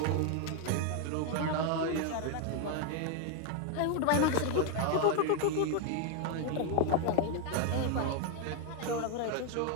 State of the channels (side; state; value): both; different; correlation 0.01